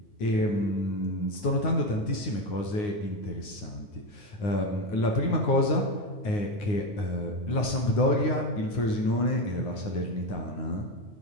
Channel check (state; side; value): late; right; 9.6 ms